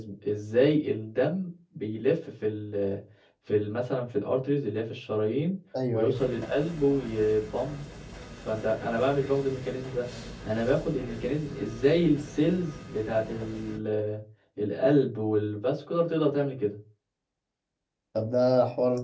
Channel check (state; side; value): identical; both; correlation 1.00